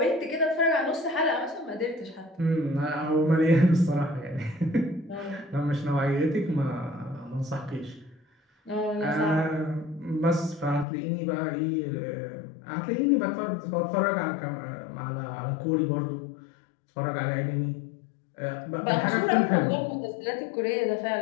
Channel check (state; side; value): drops out; right; at 10.9 s